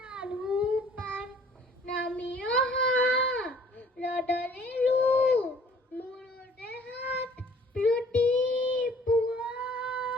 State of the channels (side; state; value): both; normal; correlation 0.55